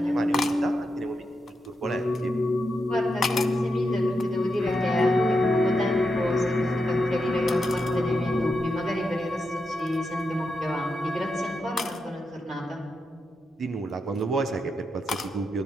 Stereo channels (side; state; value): both; normal; correlation 0.86